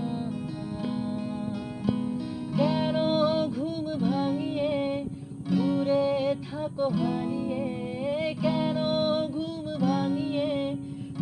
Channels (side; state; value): both; identical; correlation 1.00